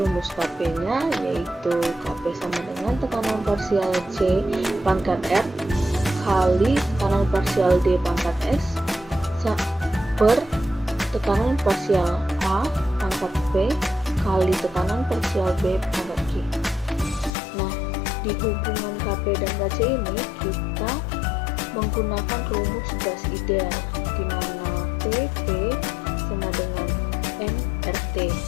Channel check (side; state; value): right; drops out; at 17.3 s